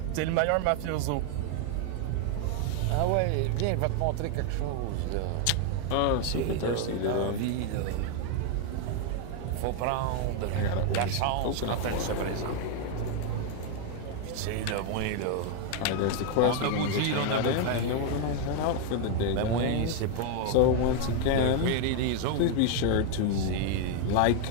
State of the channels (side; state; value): both; different; correlation 0.00